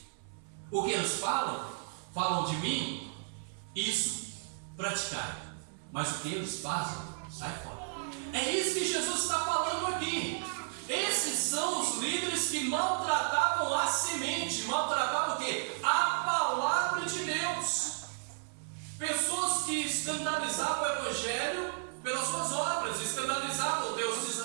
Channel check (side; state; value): left; silent; 56 dB below the other